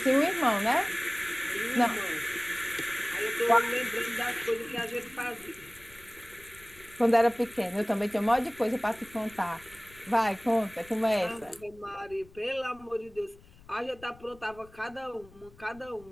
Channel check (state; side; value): noise; left; rumble, 24 dB below the sound